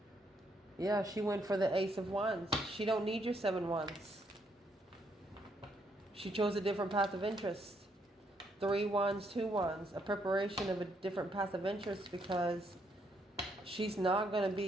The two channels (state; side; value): normal; both; correlation 0.74